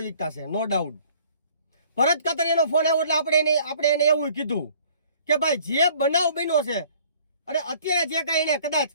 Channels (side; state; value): both; inverted; correlation -0.55